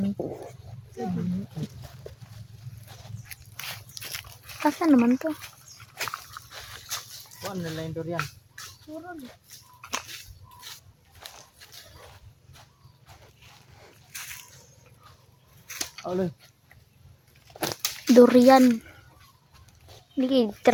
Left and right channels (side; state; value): both; identical; correlation 1.00